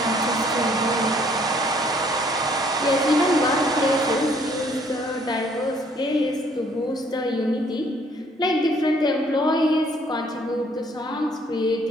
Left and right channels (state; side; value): normal; both; correlation 0.63